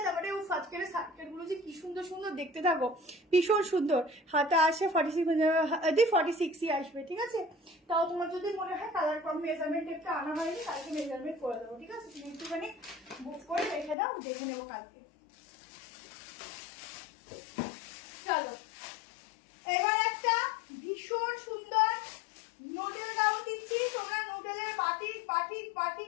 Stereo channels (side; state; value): right; drops out; at 14.0 s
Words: তারপরে ও আজকের সার্কেল গুলো যে কি সুন্দর সুন্দর দেখতে থাকো, ভীষণ সুন্দর। হাতে আসে 46ই আসবে। ঠিক আছে, তাও তোমার যদি মনে হয় কালার কম মেজারমেন্ট একটা আনা হয়নি, কালকে মেজারমেন্ট করে দেবো। ঠিক আছে, তুমি একটুখানি বুক করে রেখে দাও, দেখে নেবো কালকে। চলো এবার একটা ভীষণ সুন্দর নুডল গাউন দিচ্ছি। তোমরা নুডলের বাটিক বাটিক